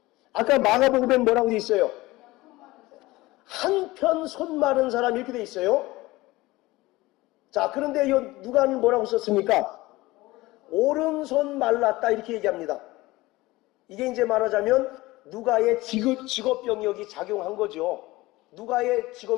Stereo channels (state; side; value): quieter; right; 19.6 dB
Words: 아까 마가복음엔 뭐라고 돼 있어요? 한편 손 마른 사람 이렇게 돼 있어요. 자, 그런데 누가는 뭐라고 썼습니까? 오른손 말랐다 이렇게 얘기합니다. 이게 이제 말하자면 누가의 직업병력이 작용한 거죠. 누가의